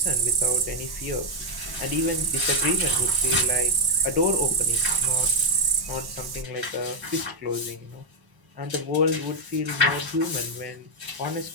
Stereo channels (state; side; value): late; left; 1.1 ms